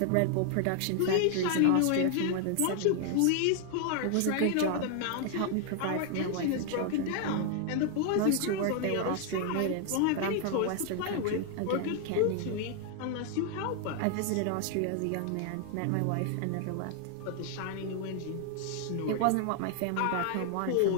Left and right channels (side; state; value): both; different; correlation 0.00